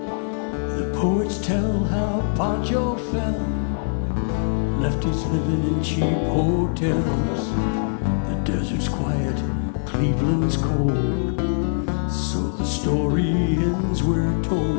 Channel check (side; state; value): right; silent; 55 dB below the other